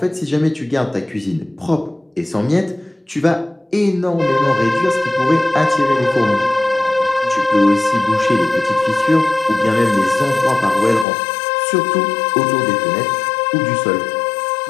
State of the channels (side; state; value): right; drops out; at 11.1 s